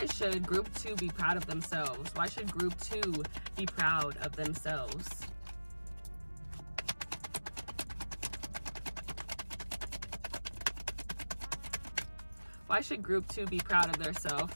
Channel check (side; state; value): both; inverted; correlation -1.00